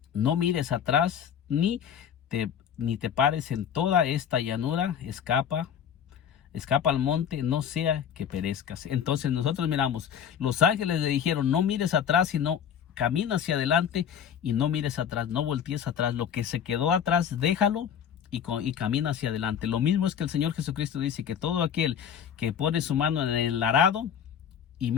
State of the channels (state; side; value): quieter; right; 8.4 dB